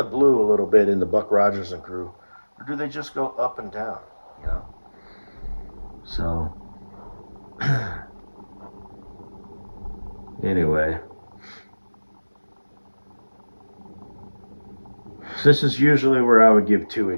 blue a little bit in the Buck Rogers and crew, or do they just go up and down? You know. So anyway, this is usually where I would give two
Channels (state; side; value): inverted; both; correlation -1.00